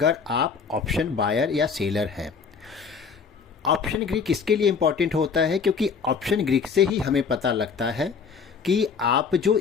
आप ऑप्शन बायर या सेलर हैं। ऑप्शन ग्रीक इसके लिए इम्पॉर्टेंट होता है क्योंकि ऑप्शन ग्रीक से ही हमें पता लगता है कि आप जो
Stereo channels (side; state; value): right; quieter; 5.8 dB